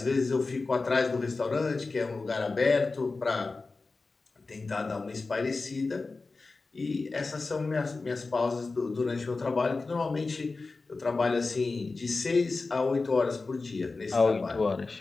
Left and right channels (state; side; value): quieter; right; 3.8 dB